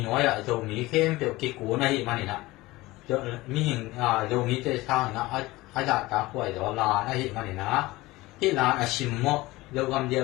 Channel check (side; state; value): right; quieter; 19.7 dB